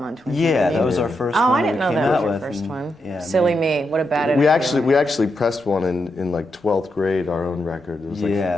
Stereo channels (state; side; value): normal; both; correlation 0.84